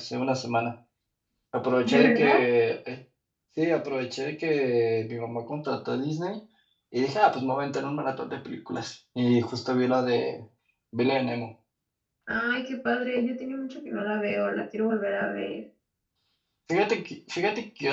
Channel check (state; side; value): identical; both; correlation 1.00